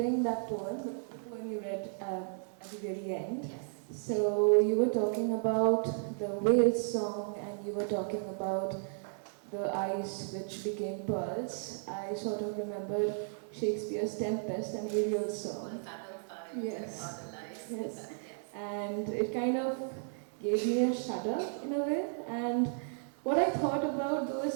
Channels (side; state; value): left; silent; digital silence